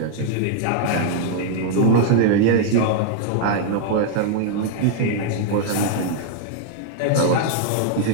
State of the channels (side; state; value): both; different; correlation -0.01